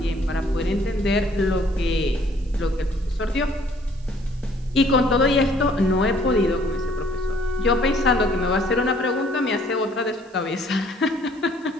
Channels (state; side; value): noise; right; hiss, 30 dB below the sound